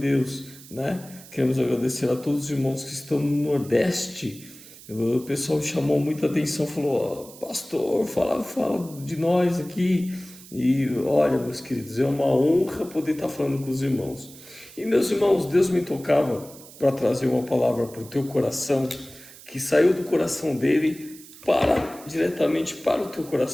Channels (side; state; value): right; noise; hiss, 19 dB below the sound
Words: né? Queremos agradecer a todos os irmãos que estão no Nordeste. O pessoal chamou muita atenção, falou: "Ó, pastor, fala de nós aqui." E olha, meus queridos, é uma honra poder estar falando com os irmãos. E meus irmãos, Deus me tocava para trazer uma palavra para o teu coração, que saiu do coração dele diretamente para o teu